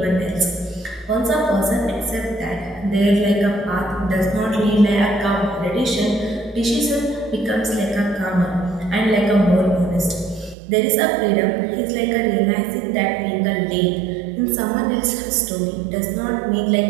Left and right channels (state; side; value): drops out; left; at 10.6 s